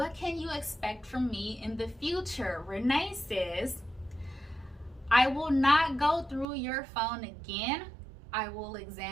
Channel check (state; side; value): drops out; left; at 6.5 s